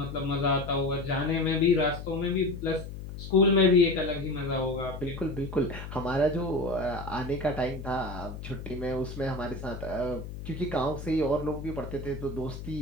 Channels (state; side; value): noise; left; hum, 9 dB below the sound